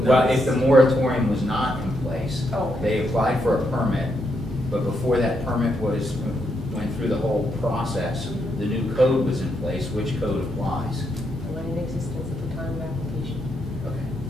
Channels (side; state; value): right; noise; hum, 14 dB below the sound